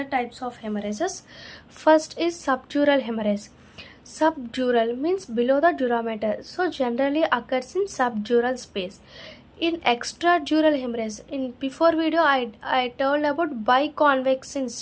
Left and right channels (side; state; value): both; identical; correlation 1.00